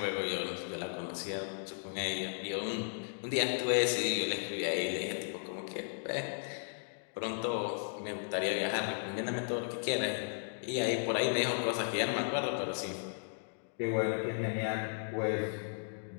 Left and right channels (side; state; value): right; silent; digital silence